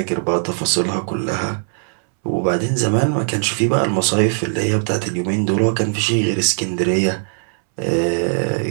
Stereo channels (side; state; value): left; silent; 66 dB below the other